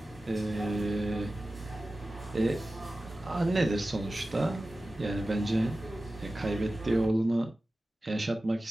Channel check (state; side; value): normal; both; correlation 0.95